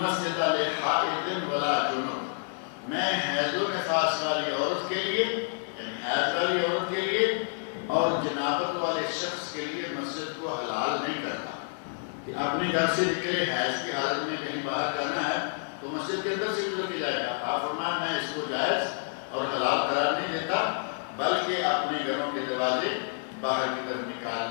لحائض ولا جنب، میں حیض و نفاس والی عورت کے لیے، یعنی حیض والی عورت کے لیے اور جنابت والے شخص کے لیے مسجد کو حلال نہیں کرتا کہ اپنے گھر سے نکلے حیض کی حالت میں کہیں باہر جانا ہے تو مسجد کے اندر سے گزر کے جائے گا۔ آپ فرمایا میں اس کو جائز اور حلال قرار نہیں دیتا، بلکہ اپنے گھروں کے دروازے باہر کی طرف نکال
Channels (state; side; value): silent; right; digital silence